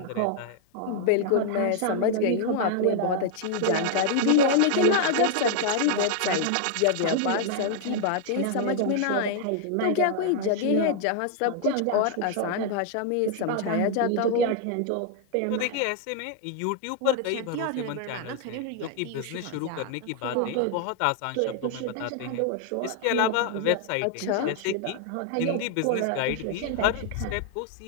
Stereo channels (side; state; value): both; different; correlation 0.00